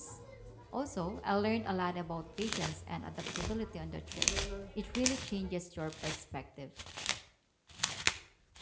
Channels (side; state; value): both; identical; correlation 1.00